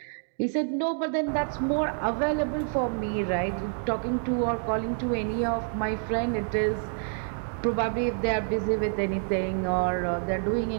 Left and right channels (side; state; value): left; silent; 60 dB below the other